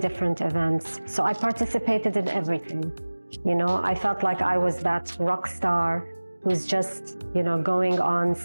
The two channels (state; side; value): inverted; both; correlation -1.00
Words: events. So I participated in everything. You know, I felt like I was that rock star who's just, you know, going on